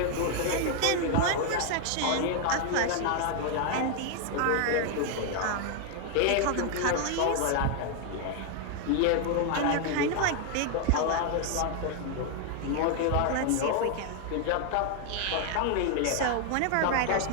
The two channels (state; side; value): different; both; correlation 0.00